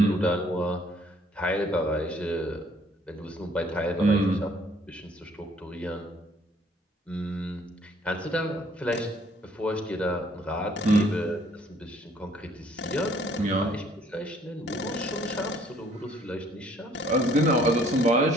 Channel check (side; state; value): both; normal; correlation 0.61